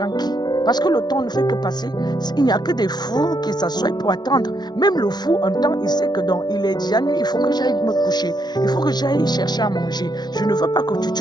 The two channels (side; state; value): right; late; 0.20 ms